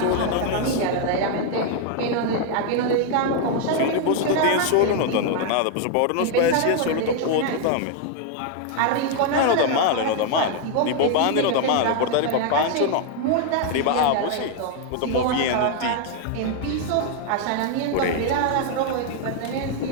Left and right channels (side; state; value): both; different; correlation 0.00